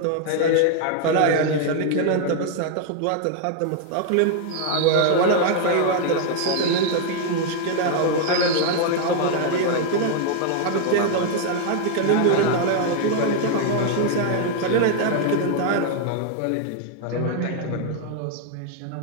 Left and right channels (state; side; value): different; both; correlation 0.00